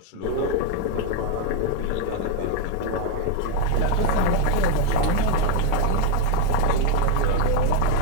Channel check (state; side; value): different; both; correlation 0.02